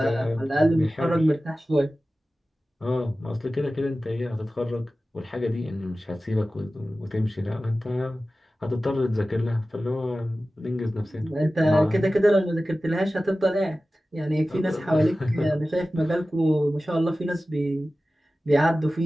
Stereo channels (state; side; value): normal; both; correlation 0.95